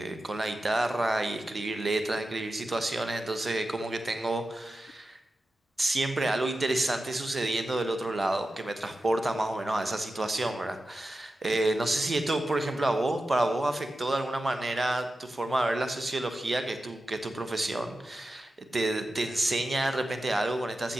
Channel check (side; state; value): both; normal; correlation 0.92